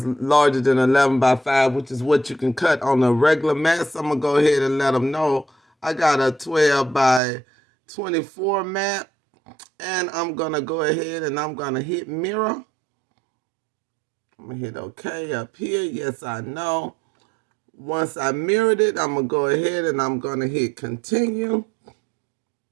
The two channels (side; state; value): left; drops out; at 7.2 s